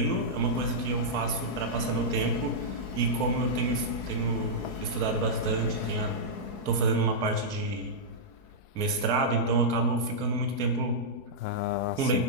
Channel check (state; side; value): late; right; 4.7 ms